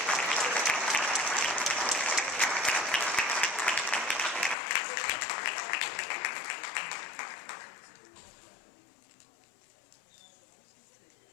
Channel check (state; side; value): drops out; right; at 4.5 s